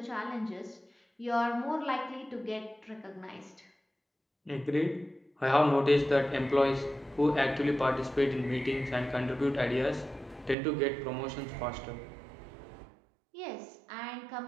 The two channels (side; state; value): left; drops out; at 10.6 s